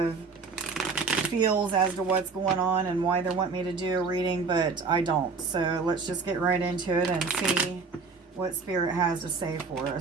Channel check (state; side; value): quieter; left; 4.7 dB